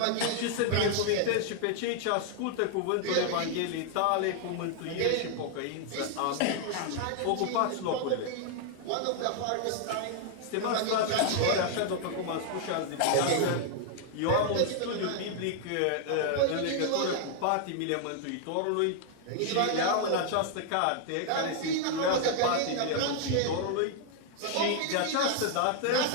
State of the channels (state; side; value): different; both; correlation 0.00